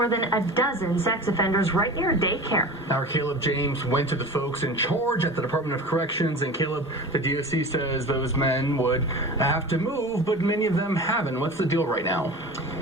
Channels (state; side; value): normal; both; correlation 0.34